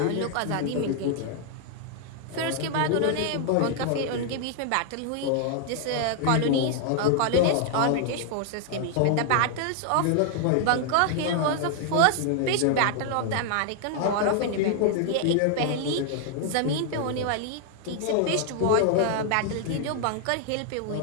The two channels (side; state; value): both; different; correlation 0.00